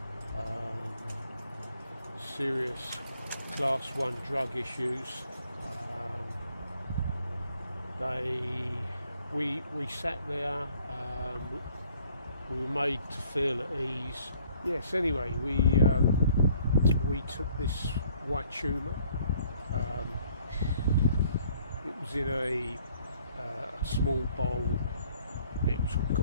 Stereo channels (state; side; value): inverted; both; correlation -0.61